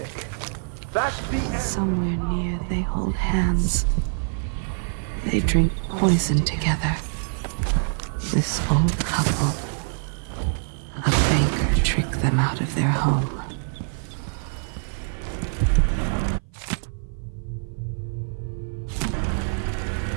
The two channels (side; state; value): left; silent; 57 dB below the other